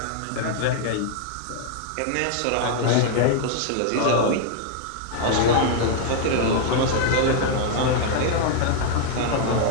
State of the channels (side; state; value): both; different; correlation 0.00